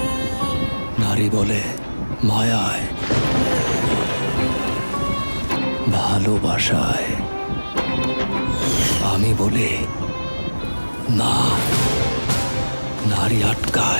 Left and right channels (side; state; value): both; inverted; correlation -1.00